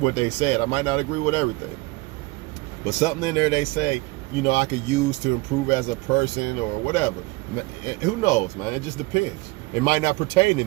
they said. I might not agree with everything. But something in there they say, you know, I could use to improve as a person or whatever. Who knows, man? It just depends. It might not pertain to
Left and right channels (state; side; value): quieter; left; 23.0 dB